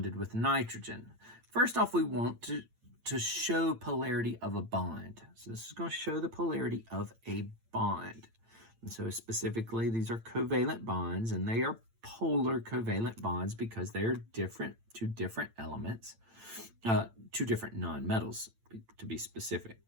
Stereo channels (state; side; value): late; left; 8.9 ms